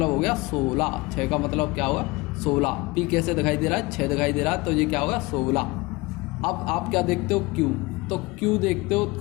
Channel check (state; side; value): quieter; right; 23.2 dB